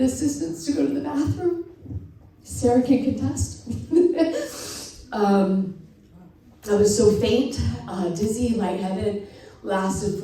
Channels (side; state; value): both; identical; correlation 1.00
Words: to go to the bathroom. Sarah can contest. I was so faint, dizzy, lightheaded, lasted